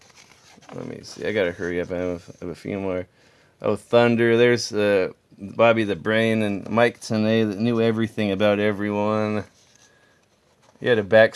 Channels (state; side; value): identical; both; correlation 1.00